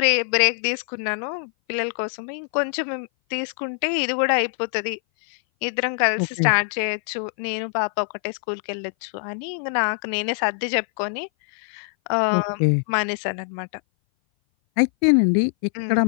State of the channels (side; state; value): right; silent; 58 dB below the other